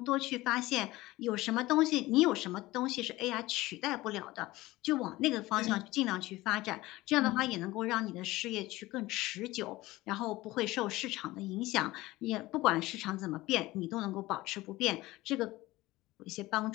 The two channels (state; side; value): quieter; right; 18.7 dB